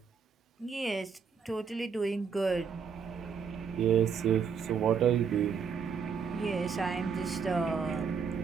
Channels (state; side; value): quieter; left; 6.2 dB